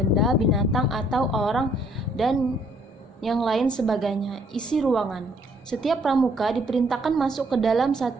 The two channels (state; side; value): normal; both; correlation 0.66